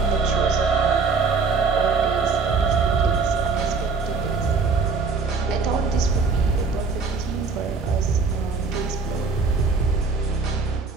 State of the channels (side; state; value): left; quieter; 4.7 dB